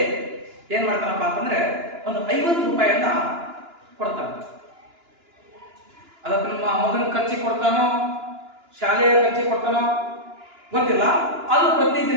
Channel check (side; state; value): left; late; 2.9 ms